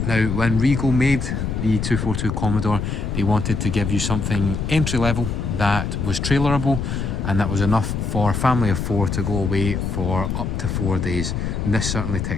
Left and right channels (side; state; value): left; noise; rumble, 2 dB below the sound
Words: Now, when Regal made the 242 Commodore, they wanted to give you something entry level that was trailerable and that was enough for a family of 4 to go away for up to 4 days. And this certainly